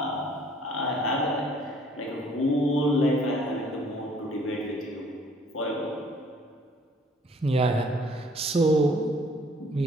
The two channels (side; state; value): both; normal; correlation 0.58